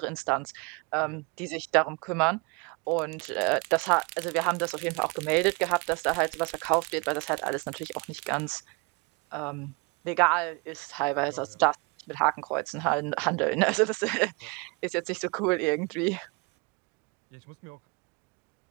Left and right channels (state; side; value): quieter; left; 29.5 dB